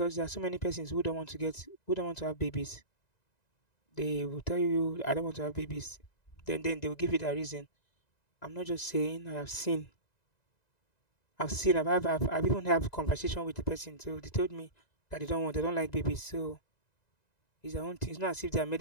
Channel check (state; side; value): late; right; 1.9 ms